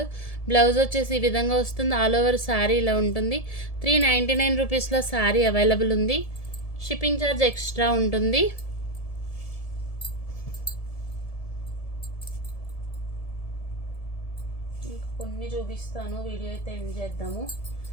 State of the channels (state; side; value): late; right; 1.7 ms